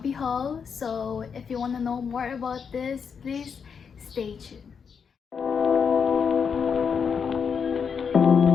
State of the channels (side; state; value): right; quieter; 6.4 dB